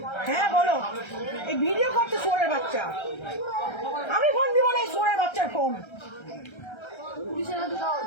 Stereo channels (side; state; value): right; late; 1.3 ms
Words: হ্যাঁ বলো। এই ভিডিও করছে সোরের বাচ্চা, আমি ফোন দিব না এই সোরের বাচ্চার ফোন। পুলিশের হাতে দেওয়া